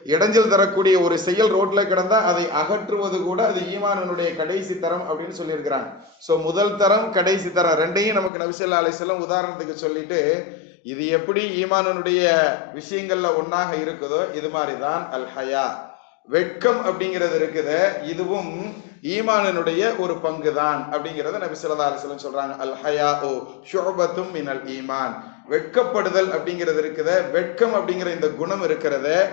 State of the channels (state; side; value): drops out; right; at 8.3 s